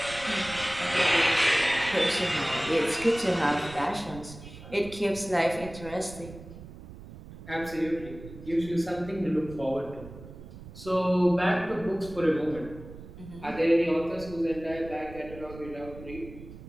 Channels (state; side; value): noise; right; rumble, 15 dB below the sound